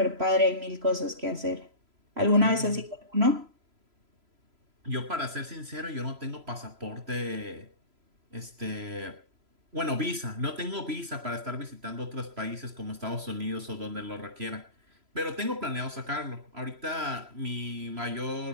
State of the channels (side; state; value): left; late; 3.0 ms